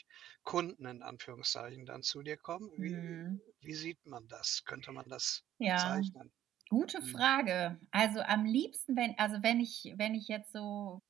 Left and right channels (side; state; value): left; quieter; 11.9 dB